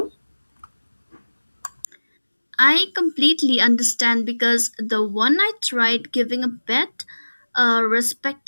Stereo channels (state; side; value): inverted; both; correlation -1.00